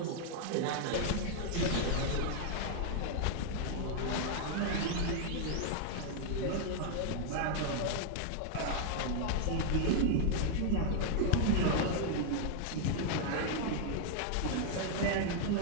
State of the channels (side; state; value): both; different; correlation 0.00